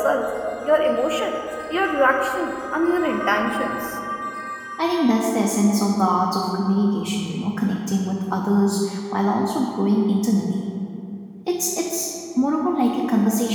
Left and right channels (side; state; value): both; identical; correlation 1.00